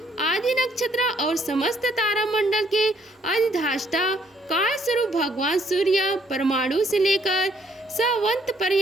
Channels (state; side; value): normal; both; correlation 0.67